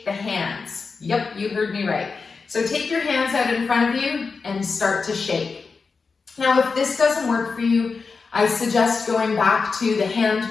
the hands. Yep, you heard me right. So take your hands out in front of you and start to shake. Now, if this doesn't work for you, I suggest going back to the hand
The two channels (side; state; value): right; quieter; 4.7 dB